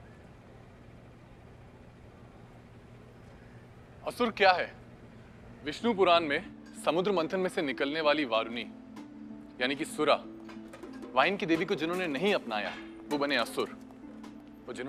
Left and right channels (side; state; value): both; identical; correlation 1.00